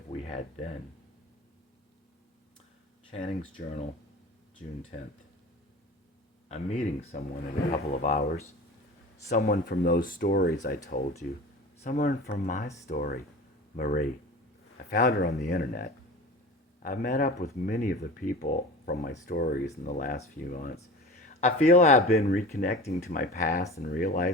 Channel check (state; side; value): normal; both; correlation 0.36